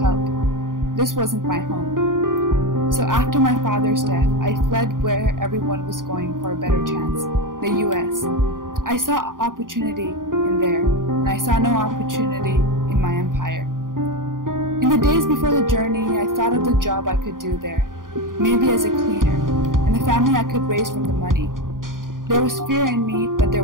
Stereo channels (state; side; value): late; left; 0.90 ms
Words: This wasn't my home. So after my father's death, I fled where everyone was going for a better chance, the U.S. I saw opportunity in there, and I saw no opportunity in my empire. In the days before the journey, I thought of the job I could do there, maybe as a cleaner, and the family I could raise from the money. There was fear in me, but there